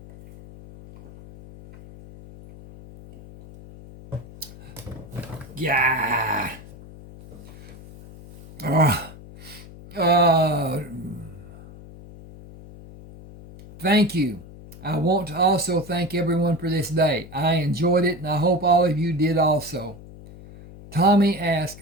Yeah. Thank you. I want to also thank everyone for this day. I enjoyed it, and I hope all of you did also. Tommy asked,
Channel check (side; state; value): left; noise; hum, 18 dB below the sound